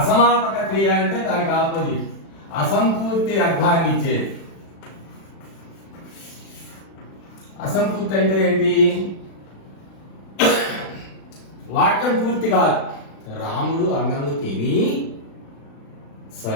క్రియ అంటే దానికి ఆపోజిట్, అసంపూర్తి అర్థాన్ని ఇచ్చేది. అసంపూర్తి అంటే ఏంటి? వాక్యం పూర్తి కాదు. రాముడు అన్నము తిని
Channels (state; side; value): late; right; 36 ms